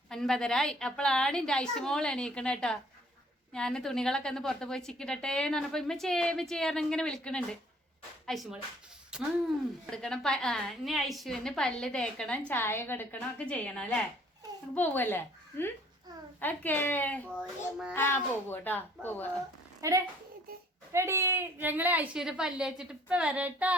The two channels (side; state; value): both; normal; correlation 0.58